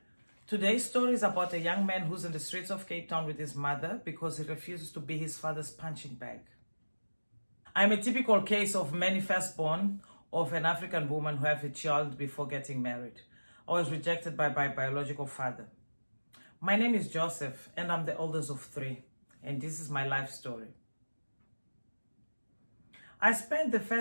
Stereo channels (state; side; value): inverted; both; correlation -1.00